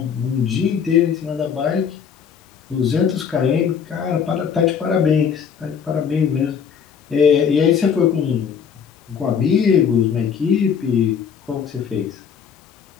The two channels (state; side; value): quieter; right; 7.2 dB